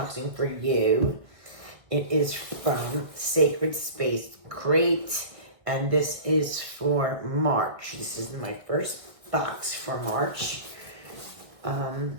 for you. It is from Sacred Space Crate, and this is for March. This is my first box for March.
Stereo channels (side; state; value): left; late; 1.4 ms